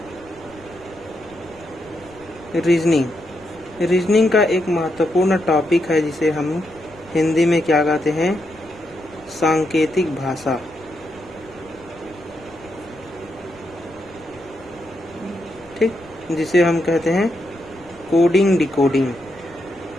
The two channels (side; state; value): left; noise; rumble, 24 dB below the sound